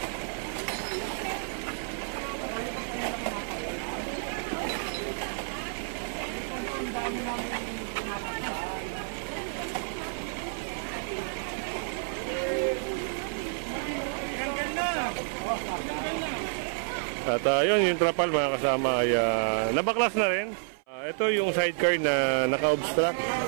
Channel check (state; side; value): silent; left; 58 dB below the other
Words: At yun, yung trapal mga kasama ay nabaklas na rin. Ito yung sidecar na naka-obstruct